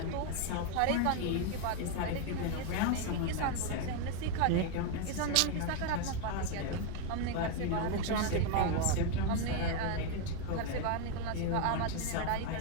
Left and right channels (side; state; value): both; different; correlation 0.01